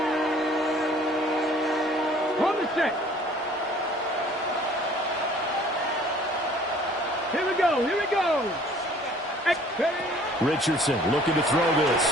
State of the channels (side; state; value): both; normal; correlation 0.54